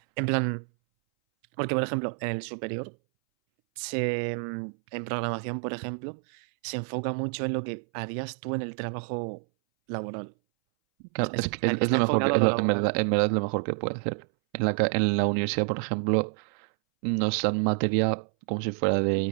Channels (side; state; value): left; silent; 60 dB below the other